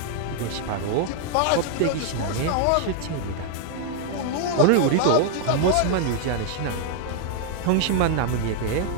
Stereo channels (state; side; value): different; both; correlation 0.00